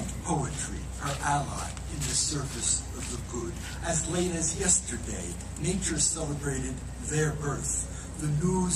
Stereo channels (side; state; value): both; identical; correlation 1.00